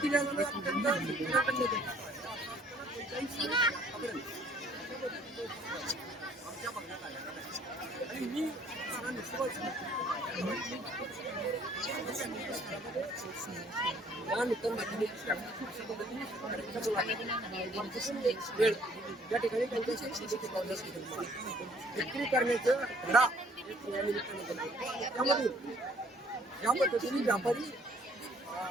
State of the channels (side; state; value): both; normal; correlation 0.60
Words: या ठिकाणी विक्री करण्याचं धडा त्यामध्ये या पद्धतीने व्यापारी